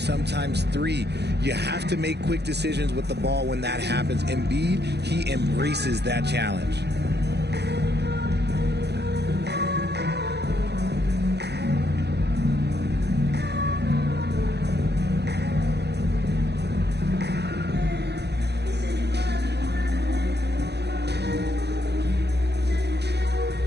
3. You have to make quick decisions with the ball when that happens. Embiid, he embraces that challenge.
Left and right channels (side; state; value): left; late; 0.49 ms